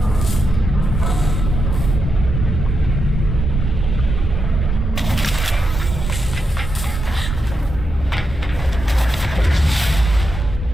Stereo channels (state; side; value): normal; both; correlation 0.86